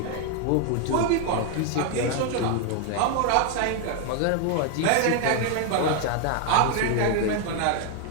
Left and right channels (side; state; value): both; different; correlation 0.00